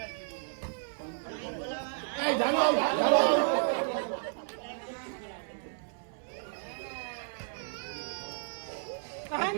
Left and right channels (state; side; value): silent; left; 56 dB below the other